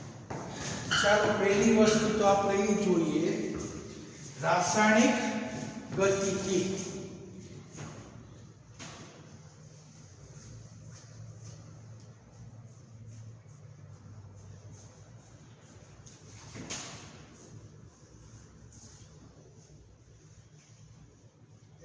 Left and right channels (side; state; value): both; identical; correlation 1.00